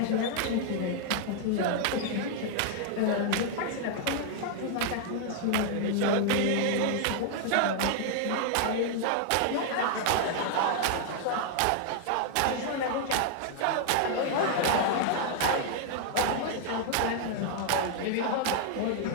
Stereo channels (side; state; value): both; different; correlation 0.00